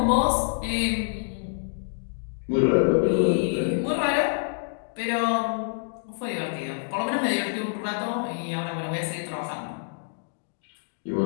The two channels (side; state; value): right; silent; digital silence